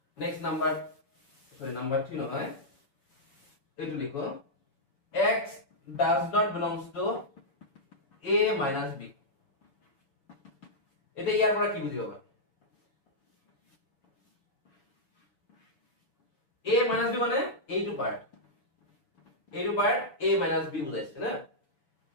নেক্সট নাম্বার নাম্বার 3 নহয় এইটো লিখো x does not belongs to a minus b এটা ইয়াৰ পৰা কি বুজিবা a minus b মানে এইটো পার্ট a minus b বুজাইছে না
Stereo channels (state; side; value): late; right; 7.6 ms